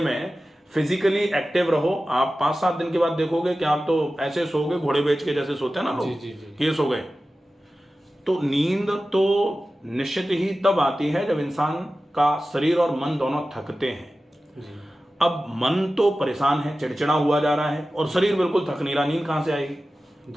फिजिकली एक्टिव रहो। आप 5-7 दिन के बाद देखोगे कि आप तो ऐसे सोओगे घोड़े बेच के जैसे सोते हैं ना लोग, कि ये सो गए। तो नींद तो निश्चित ही तब आती है जब इंसान का शरीर और मन दोनों थकते हैं। अब मन तो परेशान है, चिड़चिड़ा हुआ जा रहा है, और शरीर बिल्कुल थक नहीं रहा, नींद कहां से आएगी?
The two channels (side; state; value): both; normal; correlation 0.95